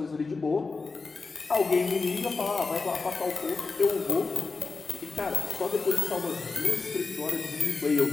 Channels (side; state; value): right; quieter; 4.2 dB